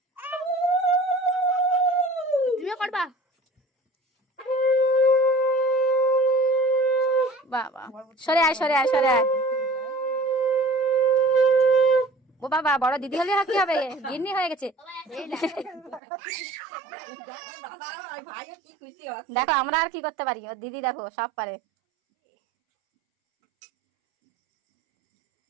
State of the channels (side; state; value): left; drops out; at 16.0 s